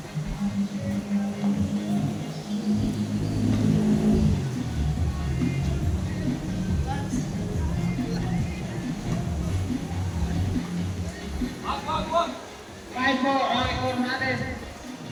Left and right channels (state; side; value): identical; both; correlation 1.00